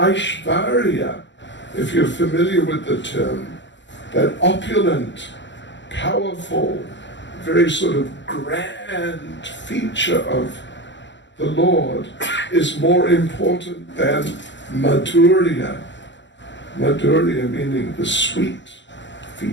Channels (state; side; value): late; right; 0.53 ms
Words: if you're familiar with the term, that opulent, powerful, very sort of grand feature of the Lord is more important than Madhurya. Madhurya meaning the sweet